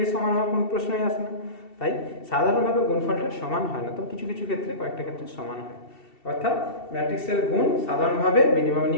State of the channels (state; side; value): late; right; 2.7 ms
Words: এর সমান হওয়ার কোনো প্রশ্নই আসে না। তাই সাধারণভাবে গুণফলটা সমান হয় না, তবে কিছু কিছু ক্ষেত্রে, কয়েকটা ক্ষেত্রে সমান হয়। অর্থাৎ ম্যাট্রিক্সের গুণ সাধারণভাবে মিনিমাম